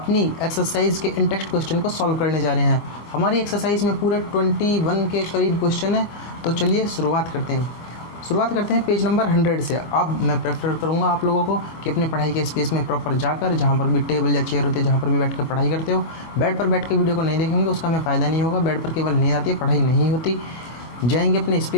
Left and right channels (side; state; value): right; late; 24 ms